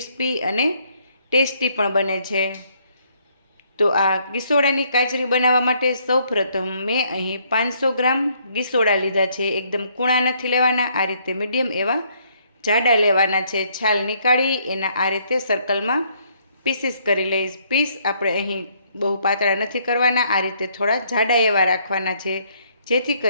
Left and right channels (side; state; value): both; inverted; correlation -0.68